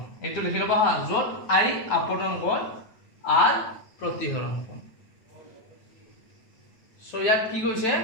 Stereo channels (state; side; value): late; right; 8.9 ms